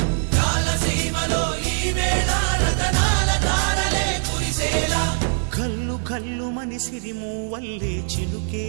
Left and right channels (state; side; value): silent; left; 64 dB below the other